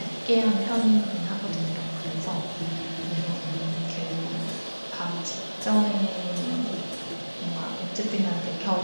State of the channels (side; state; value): both; inverted; correlation -1.00